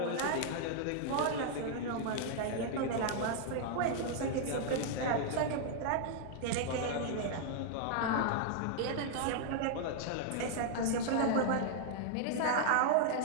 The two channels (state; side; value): different; both; correlation -0.01